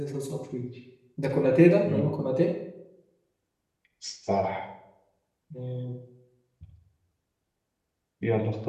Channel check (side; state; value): both; identical; correlation 1.00